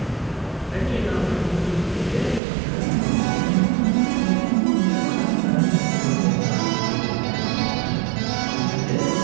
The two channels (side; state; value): left; drops out; at 2.4 s